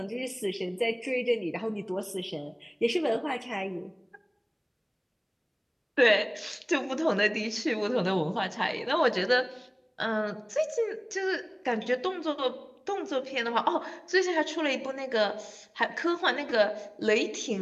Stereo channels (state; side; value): identical; both; correlation 1.00